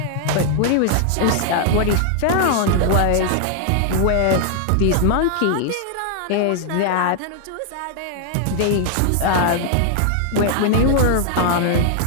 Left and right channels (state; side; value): different; both; correlation 0.00